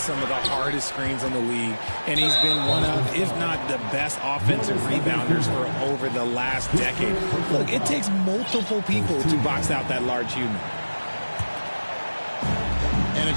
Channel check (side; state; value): both; inverted; correlation -1.00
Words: of the hardest screens in the league, and he's been one of, if not the best offensive rebounders for over the last decade. Look, it takes multiple people to box out that large human. And